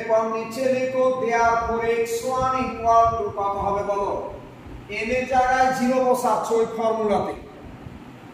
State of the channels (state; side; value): identical; both; correlation 1.00